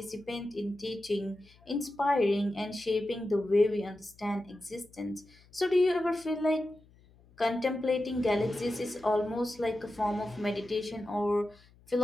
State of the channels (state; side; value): noise; left; hum, 27 dB below the sound